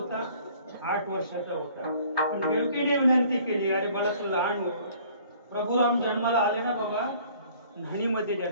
8 वर्षाचा होता. पण देवकीने विनंती केली, अरे मला तू लहान हो. प्रभू राम जन्माला आले ना बाबा, न्हाणीमध्ये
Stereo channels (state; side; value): inverted; both; correlation -0.55